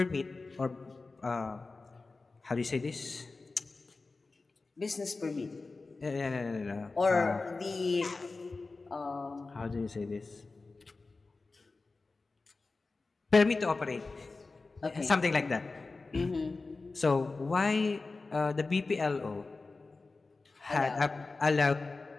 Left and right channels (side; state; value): right; quieter; 3.7 dB